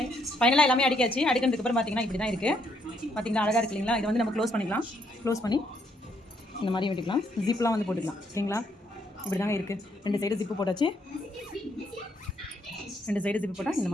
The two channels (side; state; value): both; normal; correlation 0.72